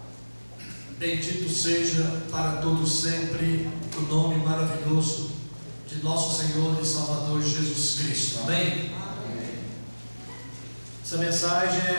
Bendito seja para todos sempre o nome maravilhoso de nosso Senhor e Salvador Jesus Cristo. Amém? Amém. Essa mensagem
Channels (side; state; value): both; inverted; correlation -1.00